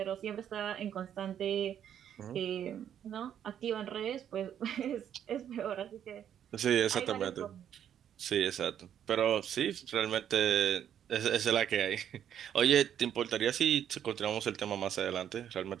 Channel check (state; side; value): quieter; left; 9.6 dB